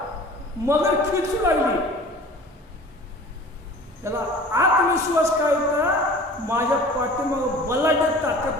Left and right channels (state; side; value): normal; both; correlation 0.43